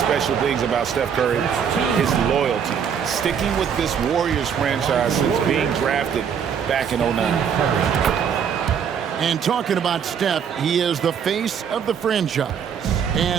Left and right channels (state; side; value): quieter; left; 7.6 dB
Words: things about Steph Curry is loyalty. Sticking with this Warriors franchise since being drafted back in '09. And talking about Steph, he is the face of the franchise,